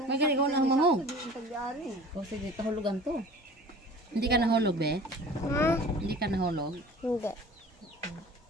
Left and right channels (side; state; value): both; normal; correlation 0.43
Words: May gani ko lang mahong. O sige, kahulugan to. Hindi ka nahulog, be? Ha? Hindi ka nahulog? Hindi.